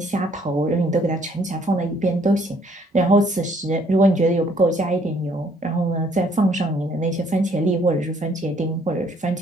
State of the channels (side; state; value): both; normal; correlation 0.64